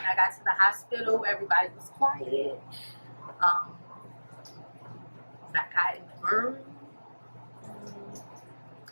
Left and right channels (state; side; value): inverted; both; correlation -1.00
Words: I got to the hospital, everybody was quiet. When I got in the room,